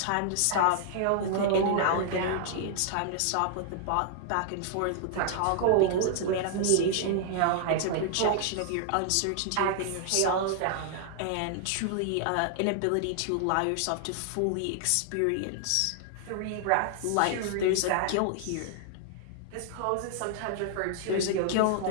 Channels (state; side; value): different; both; correlation -0.01